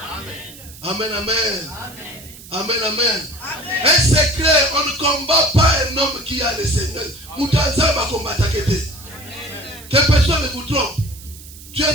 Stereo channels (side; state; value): right; noise; hiss, 18 dB below the sound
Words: Amen, amen. Amen, amen. Un secret, on ne combat pas un homme qui a le Seigneur. Moutanza va combattre. Que personne ne vous trompe. Tu es